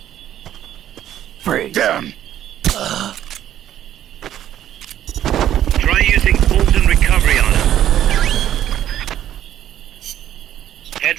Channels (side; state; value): left; quieter; 11.5 dB